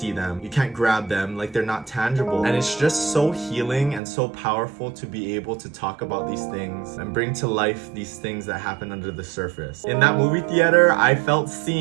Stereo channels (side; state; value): left; drops out; at 4.0 s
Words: them, you can't grab them, like they're not tangible. And it's just so healing and so powerful to be able to talk about these things and bring to life these things that happen under the surface. In that movie theater, I felt